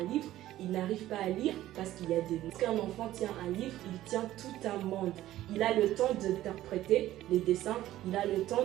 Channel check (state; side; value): quieter; left; 14.3 dB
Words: livre, il n'arrive pas à lire parce qu'il y a des mots. Lorsqu'un enfant tient un livre, il tient tout un monde. Il a le temps d'interpréter les dessins, il a le